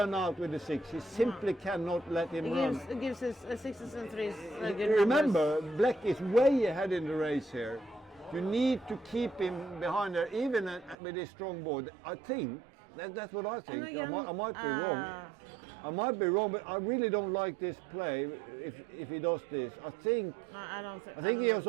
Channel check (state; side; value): drops out; left; at 11.0 s